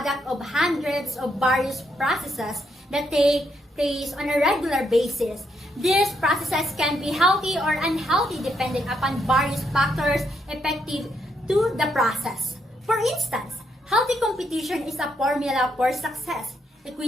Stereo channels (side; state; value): both; normal; correlation 0.77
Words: of hundreds of various processes that take place on a regular basis. These processes can be healthy or unhealthy depending upon various factors effective to the process. For instance, healthy competition is a formula for success.